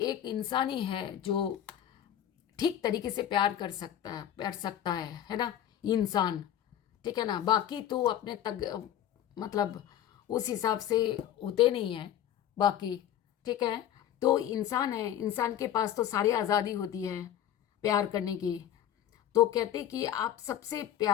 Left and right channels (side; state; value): right; quieter; 10.9 dB